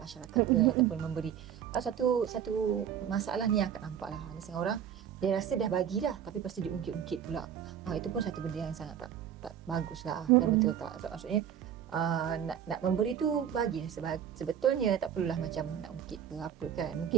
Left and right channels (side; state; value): left; quieter; 9.3 dB